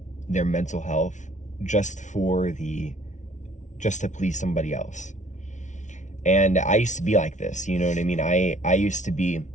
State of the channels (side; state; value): right; late; 0.36 ms